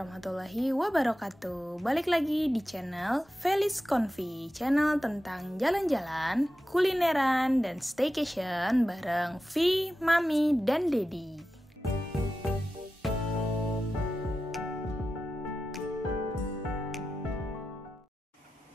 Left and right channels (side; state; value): both; normal; correlation 0.92